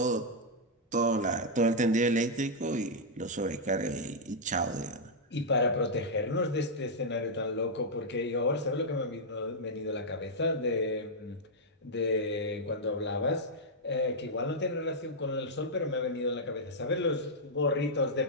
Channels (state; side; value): normal; both; correlation -0.05